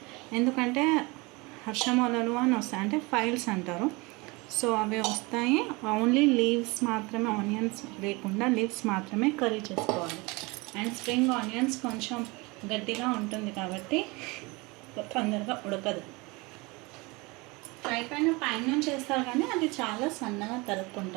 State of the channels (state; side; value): quieter; left; 25.4 dB